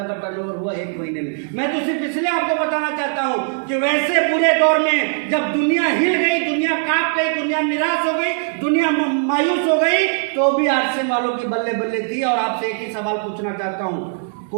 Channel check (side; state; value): left; silent; 60 dB below the other